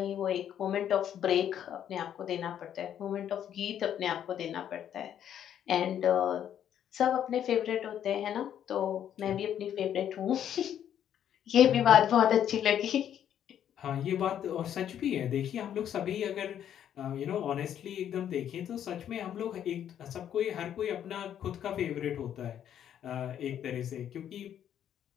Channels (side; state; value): right; quieter; 9.9 dB